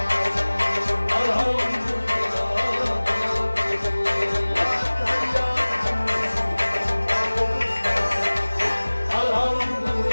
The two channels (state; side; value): inverted; both; correlation -1.00